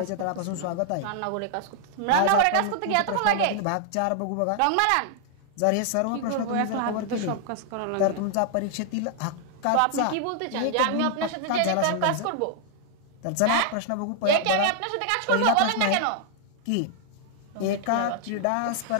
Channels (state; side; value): different; both; correlation 0.00